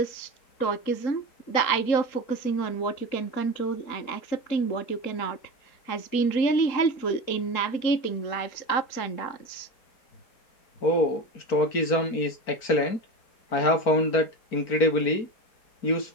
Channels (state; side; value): late; right; 3.8 ms